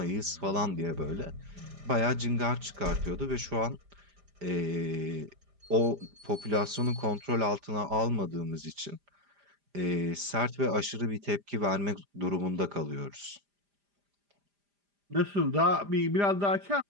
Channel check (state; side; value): late; left; 5.0 ms